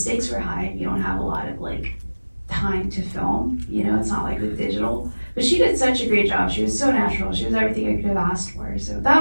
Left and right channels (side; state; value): both; inverted; correlation -1.00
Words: were high. You don't have a lot of time to film, it's not like with digital. But she did such a great job. She was so natural. She was everything I could have asked for. So